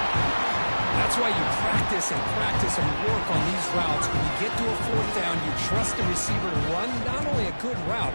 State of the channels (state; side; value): inverted; both; correlation -1.00